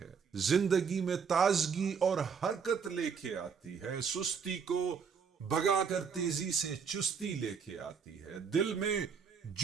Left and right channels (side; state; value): left; quieter; 6.2 dB